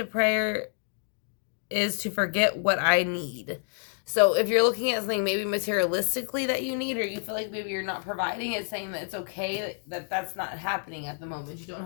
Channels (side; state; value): right; silent; 59 dB below the other